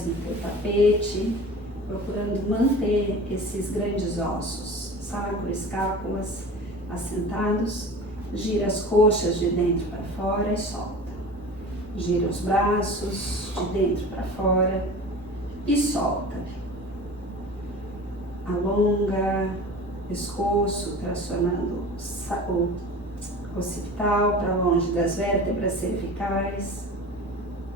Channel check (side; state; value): right; noise; rumble, 25 dB below the sound